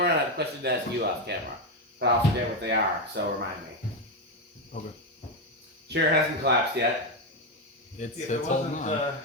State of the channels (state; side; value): normal; both; correlation 0.08